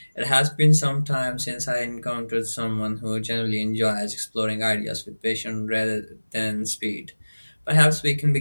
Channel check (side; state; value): both; inverted; correlation -1.00